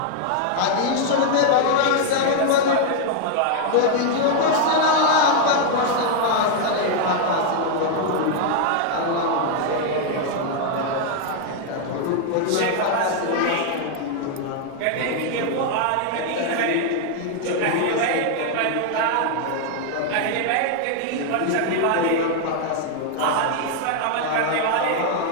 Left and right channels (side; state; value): both; different; correlation 0.00